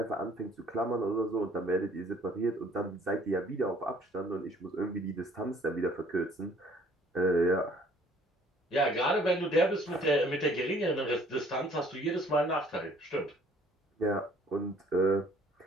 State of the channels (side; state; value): both; normal; correlation 0.58